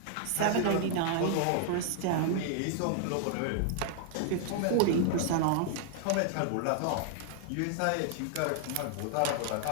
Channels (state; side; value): different; both; correlation 0.00